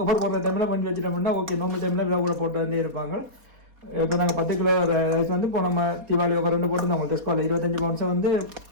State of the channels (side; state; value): left; late; 4.2 ms